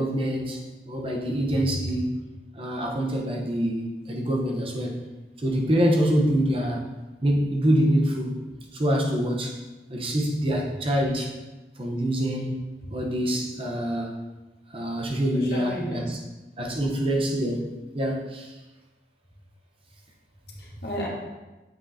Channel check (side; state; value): both; normal; correlation 0.81